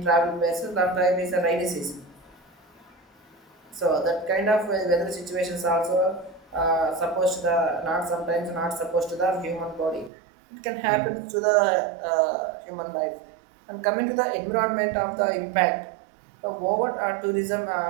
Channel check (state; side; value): drops out; left; at 10.1 s